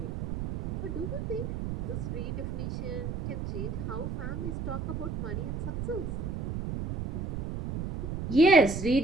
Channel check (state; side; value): noise; right; rumble, 4 dB below the sound